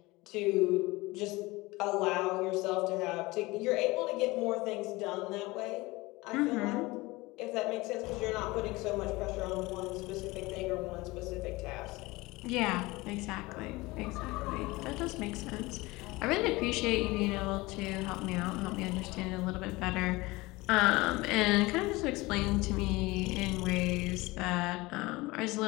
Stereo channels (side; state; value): right; quieter; 21.7 dB